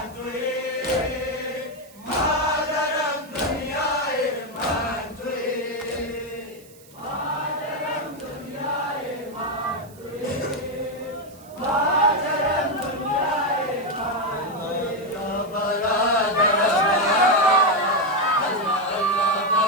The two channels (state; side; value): noise; right; hiss, 24 dB below the sound